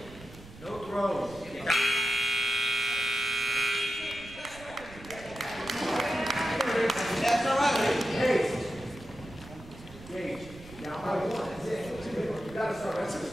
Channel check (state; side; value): noise; right; rumble, 18 dB below the sound